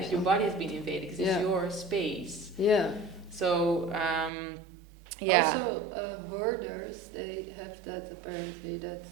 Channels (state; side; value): drops out; left; at 4.3 s